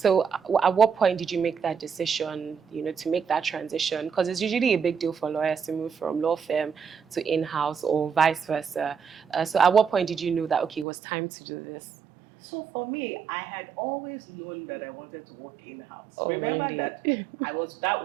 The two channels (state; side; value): drops out; left; at 10.9 s